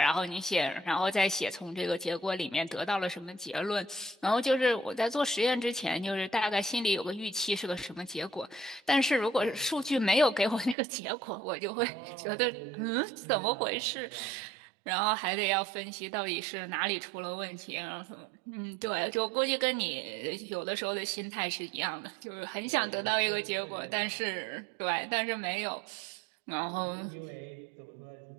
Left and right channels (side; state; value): left; drops out; at 10.8 s